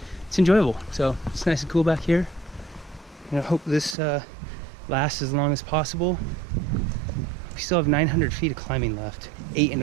enjoyable. So it's nice and cool back here, and I hope this lasts as long as possible. We still have 900 feet of climbing left,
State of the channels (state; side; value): drops out; left; at 4.0 s